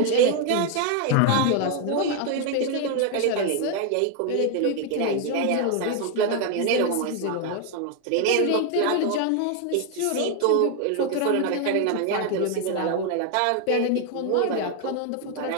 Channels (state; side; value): different; both; correlation 0.01